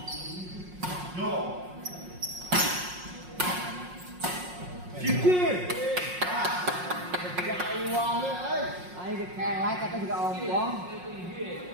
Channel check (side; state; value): left; late; 5.5 ms